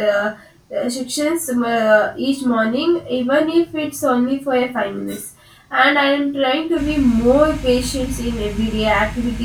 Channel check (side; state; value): both; identical; correlation 1.00